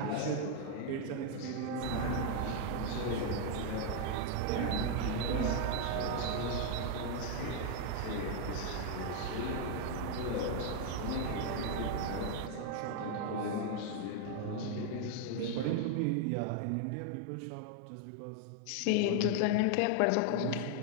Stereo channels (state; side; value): different; both; correlation 0.00